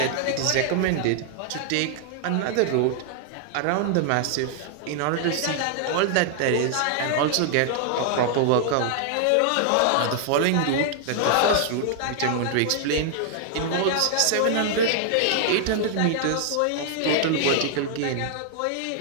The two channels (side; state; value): both; different; correlation 0.00